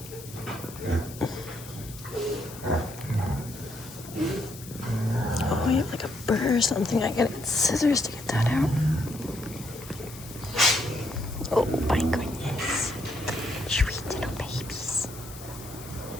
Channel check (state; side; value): noise; left; hiss, 16 dB below the sound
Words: Oh, you have like a burr or something. I gotta get scissors to get that out. Oh my goodness. Sweet little babies.